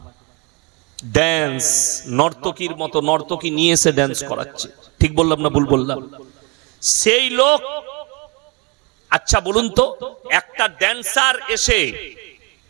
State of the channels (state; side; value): quieter; left; 29.7 dB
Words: ড্যান্স, নর্তকীর মতো নর্তকী নিয়ে এসে ড্যান্স করাচ্ছে। ঠিক বললাম না ভুল বললাম? সেই লোক, আচ্ছা বলুন তো, একটা ড্যান্সার এসে,